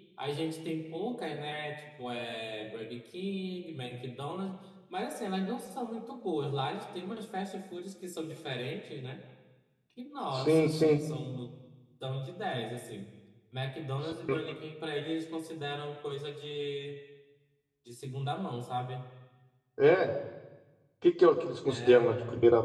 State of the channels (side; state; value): both; identical; correlation 1.00